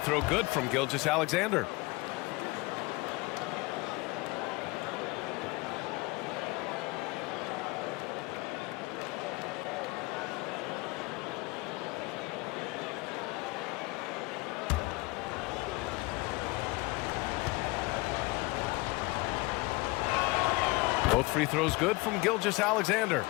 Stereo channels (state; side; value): quieter; right; 24.0 dB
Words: good from Gilgeous-Alexander. Both free throws good from Gilgeous-Alexander.